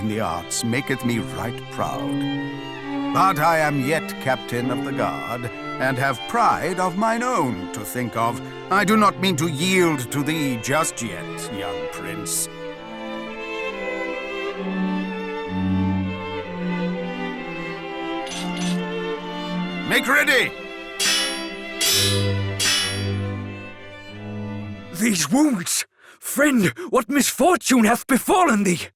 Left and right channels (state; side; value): identical; both; correlation 1.00